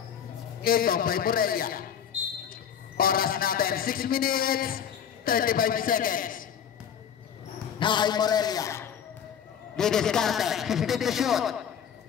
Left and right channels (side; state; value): right; quieter; 8.4 dB